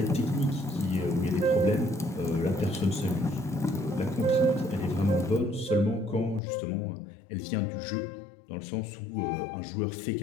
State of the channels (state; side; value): drops out; right; at 6.4 s